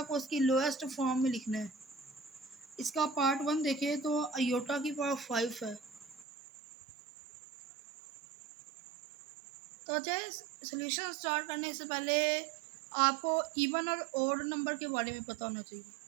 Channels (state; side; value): drops out; left; at 6.2 s